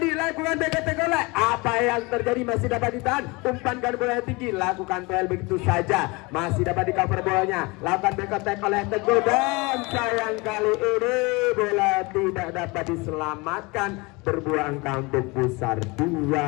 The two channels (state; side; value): quieter; right; 25.8 dB